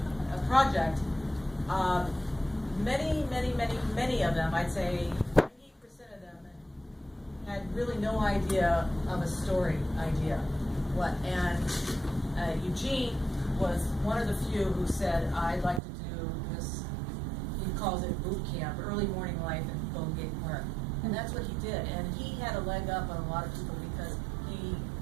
project, many of them, I'd say 98% of them, had really no idea of a story idea. And Eugene was one of the few who said, I'd like to do this, he calls it boot camp, early morning life in Golden Gate Park. And that's what he did. And he had a leg up on a lot of people because he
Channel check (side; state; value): left; drops out; at 15.8 s